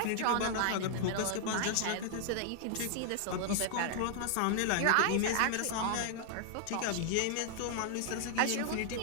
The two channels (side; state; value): both; different; correlation 0.00